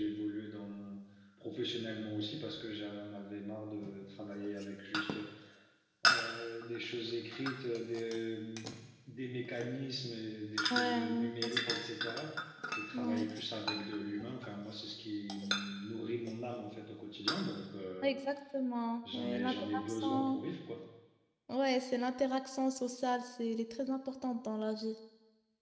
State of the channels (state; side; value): identical; both; correlation 1.00